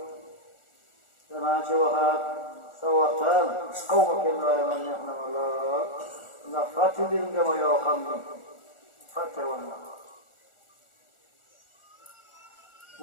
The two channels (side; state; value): right; late; 1.4 ms